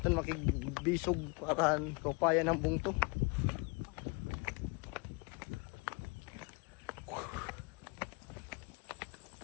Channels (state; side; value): quieter; right; 29.9 dB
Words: makigbisog para kapayan ng bungto.